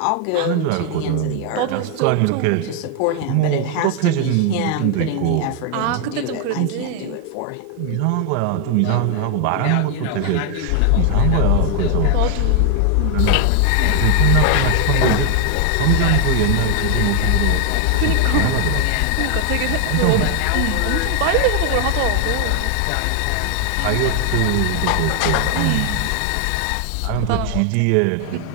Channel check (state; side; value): different; both; correlation 0.00